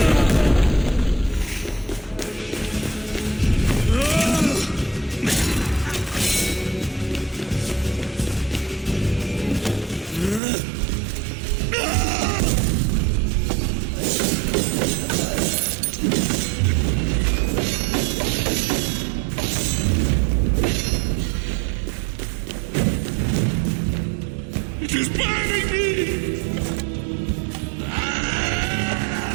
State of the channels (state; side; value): drops out; left; at 10.4 s